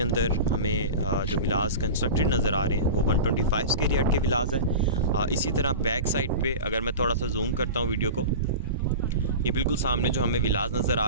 अंदर हमें जो विलाज कंस्ट्रक्टेड नज़र आ रहे हैं वो 125 स्क्वायर यार्ड के विलाज है। इसी तरह बैक साइड पे अगर मैं थोड़ा सा जूम करता हूँ वीडियो को, ये बिल्कुल सामने जो हमें विलाज नज़र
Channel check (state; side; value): inverted; both; correlation -0.30